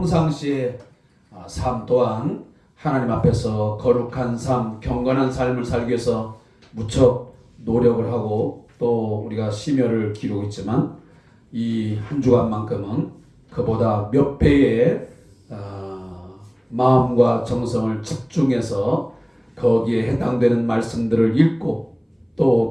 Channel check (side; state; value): both; identical; correlation 1.00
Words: 삶 또한 하나님 앞에서 거룩한 삶, 경건한 삶을 살기 위해서 무척 노력을 하고 또 우리가 심혈을 기르고 있지만 이 한 주간만큼은 그보다 몇 배의 마음과 정성을 집중해서 거기에 해당되는 말씀들을 읽고 또